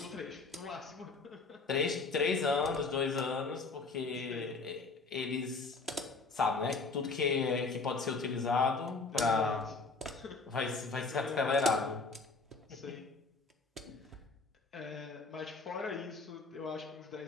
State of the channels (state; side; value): quieter; right; 4.0 dB